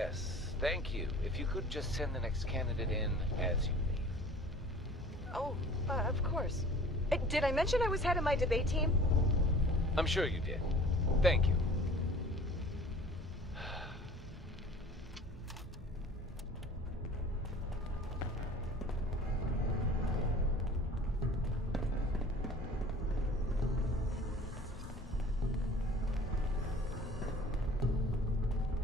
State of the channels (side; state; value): both; normal; correlation 0.46